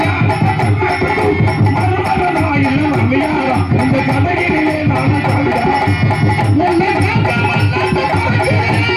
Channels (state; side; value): identical; both; correlation 1.00